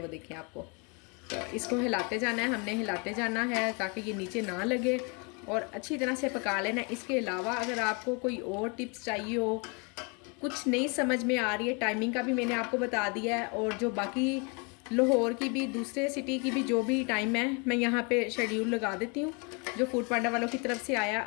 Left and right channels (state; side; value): quieter; right; 32.9 dB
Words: देखें आपको। तो इसको हिलाते जाना है, हमने हिलाते जाना है ताकि ये नीचे ना लगे और अच्छी तरह से पका लेना है। इसके अलावा अगर आपको कोई और टिप्स चाहिए हो, कुछ नहीं समझ में आ रही है, टाइमिंग का भी मैंने आपको बता दिया है, और जो बाकी लाहौर की भी, दूसरे सिटी की भी जो भी टाइम है मैं यहाँ पे शेड्यूल लगा देती हूँ जो फूड पांडा वालों की तरफ से आया।